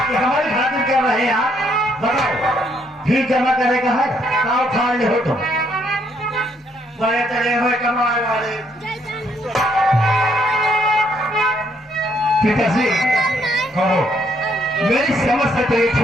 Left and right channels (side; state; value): both; normal; correlation 0.71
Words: ये हमारी खातिर कर रहे हैं आप, बताओ फीस जमा करेगा है, काव खा ले हो तुम, बड़े चले हुए कमाए वाले। पिताजी कहो, मेरी समझ से तो ये